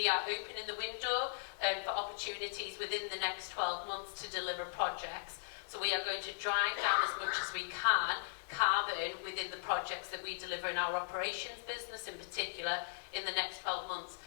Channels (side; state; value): right; silent; digital silence